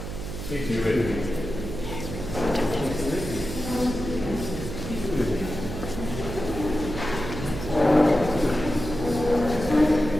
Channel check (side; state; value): right; noise; hum, 7 dB below the sound